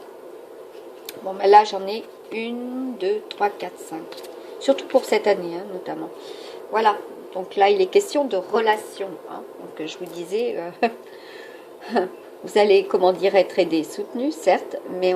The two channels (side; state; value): both; identical; correlation 1.00